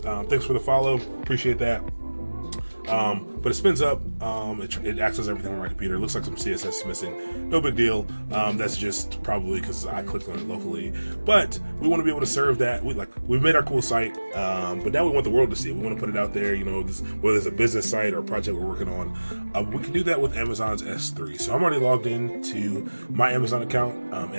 Thanks for the follow, appreciate that. But it spins up, it accesses everything on my computer. It looks like some CSS is missing. No big deal. That's just probably because I clicked on it locally. But we want to be able to serve that. We've made our cool site, but now we want the world to see it. We want to put it out there, whether it's a business site or a project we're working on. We can do that with Amazon's S3. So I'm already logged in to my Amazon account.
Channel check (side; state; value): both; inverted; correlation -1.00